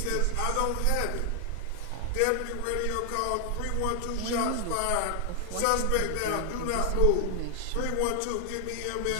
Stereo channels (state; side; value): different; both; correlation 0.00